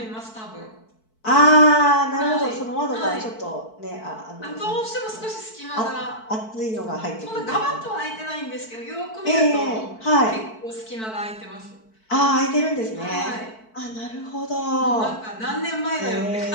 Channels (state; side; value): late; right; 4.5 ms